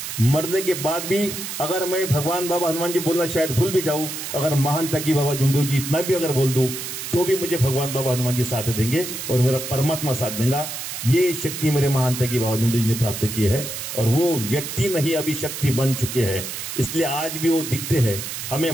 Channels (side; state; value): right; noise; hiss, 7 dB below the sound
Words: मरने के बाद भी अगर मैं भगवान बाबा हनुमान जी बोलना शायद भूल भी जाऊं, अगर महान तकी बाबा जुमदेव जी इतना भी अगर बोल दूं, तो भी मुझे भगवान बाबा हनुमान जी साथ देंगे और मेरा परमात्मा साथ देगा. ये शक्ति मेरे महान तकी बाबा जुमदेव जी ने प्राप्त की है, और वो व्यक्ति नहीं अभी शक्ति बन चुके हैं. इसलिए आज भी वो दिखते हैं, हमें